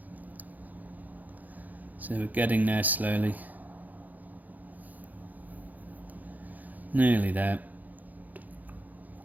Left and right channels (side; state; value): left; late; 0.081 ms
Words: So we're getting there slowly. Nearly there.